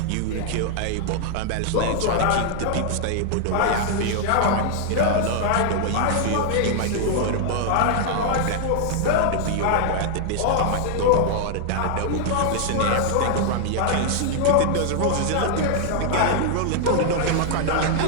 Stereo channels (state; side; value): different; both; correlation -0.01